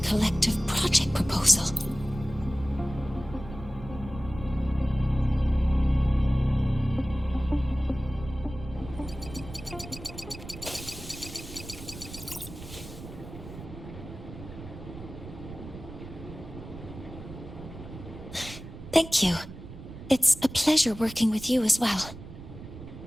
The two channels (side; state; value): right; noise; rumble, 13 dB below the sound